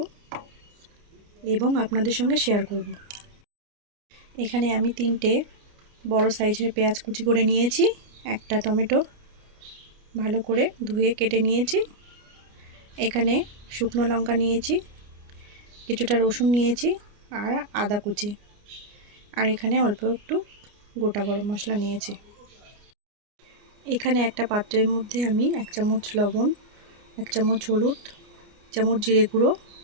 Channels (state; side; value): late; left; 29 ms